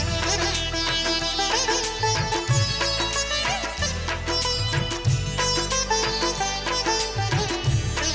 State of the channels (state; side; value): identical; both; correlation 1.00